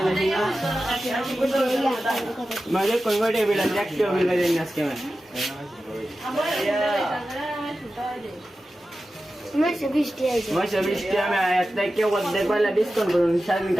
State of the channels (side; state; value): both; normal; correlation 0.93